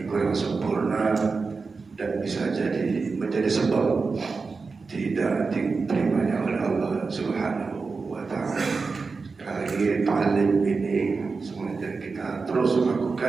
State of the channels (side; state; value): left; quieter; 4.5 dB